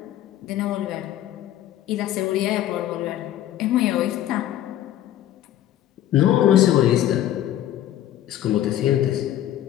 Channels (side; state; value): right; quieter; 12.4 dB